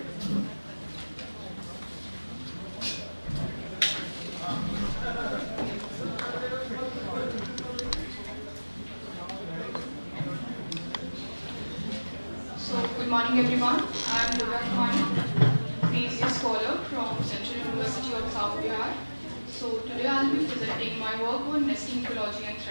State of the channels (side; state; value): both; inverted; correlation -1.00